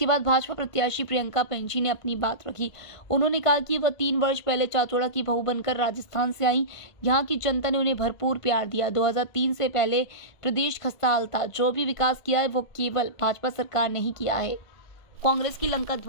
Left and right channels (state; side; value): late; right; 1.5 ms